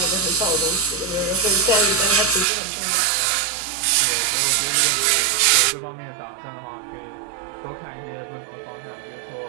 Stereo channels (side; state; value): left; drops out; at 2.5 s